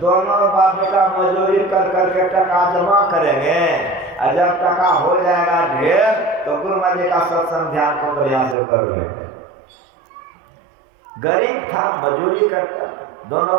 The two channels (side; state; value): left; drops out; at 8.6 s